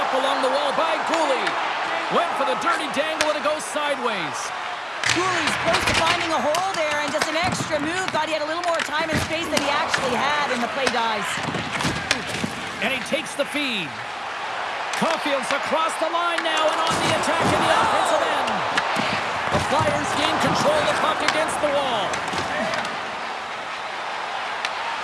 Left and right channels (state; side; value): identical; both; correlation 1.00